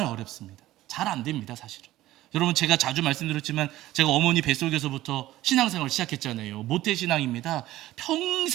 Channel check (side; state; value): left; quieter; 15.5 dB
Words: 어렵습니다. 잘 안 됩니다 사실은. 여러분 제가 자주 말씀드렸지만 제가 어머니 뱃속에서부터 신앙생활을 시작했잖아요. 모태신앙입니다.